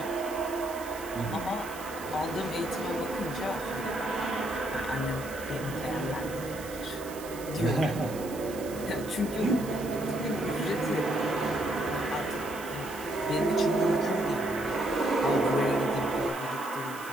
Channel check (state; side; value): noise; right; hiss, 15 dB below the sound